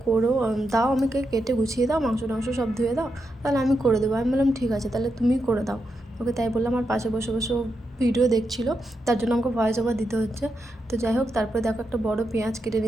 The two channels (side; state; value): both; normal; correlation 0.85